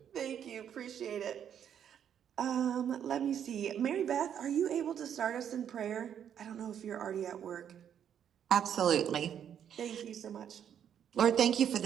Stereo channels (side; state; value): left; quieter; 9.0 dB